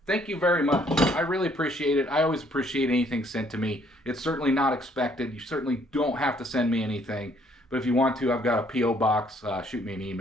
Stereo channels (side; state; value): both; normal; correlation 0.65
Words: Thank you very much. I really appreciate it. I always appreciate anything sent to me. It's certainly not expected. You certainly don't have to send me anything, but if you want to, I've got a P.O. box. Shoot me an